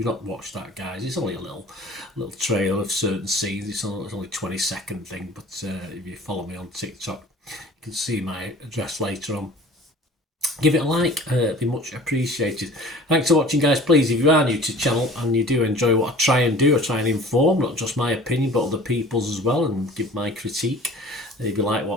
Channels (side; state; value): both; normal; correlation 0.45